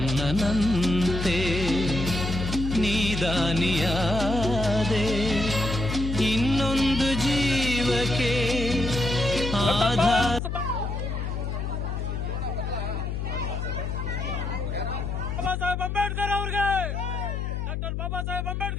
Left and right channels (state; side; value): noise; left; hum, 3 dB below the sound